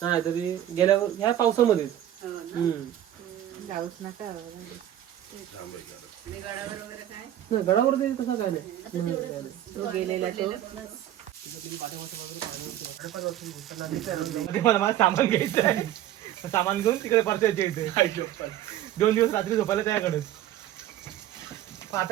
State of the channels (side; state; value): left; quieter; 12.3 dB